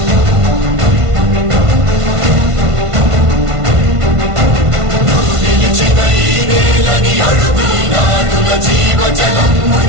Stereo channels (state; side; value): late; left; 1.5 ms